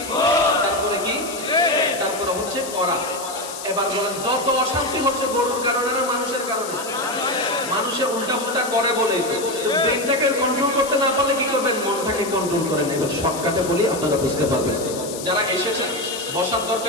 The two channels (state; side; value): noise; left; hiss, 10 dB below the sound